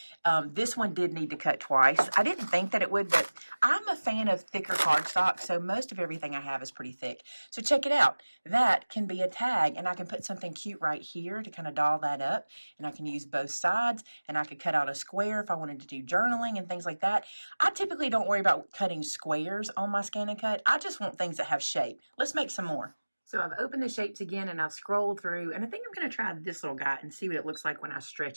this one did need to cut twice. I didn't think that it would, but I'm a fan of thicker cardstock, so most of everything I have is pretty thick. So check it out. That can be a tag, and I can put something cute right here to kind of doll that up, and I can use both sides, and I could cut out a square if I wanted to do journaling and things like that. I typically don't worry about cutting squares on my scan and cut. I just want things that have shape. Let's make some more. So I've opened the shapes again and I've scrolled through, and I think I'm going to try this little guy and see what it looks like when I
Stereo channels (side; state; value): both; inverted; correlation -1.00